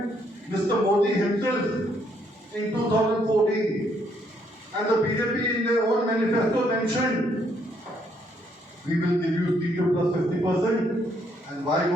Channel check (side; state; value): both; normal; correlation 0.71